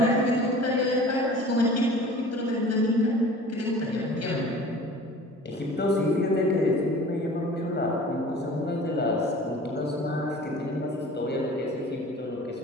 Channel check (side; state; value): both; normal; correlation 0.43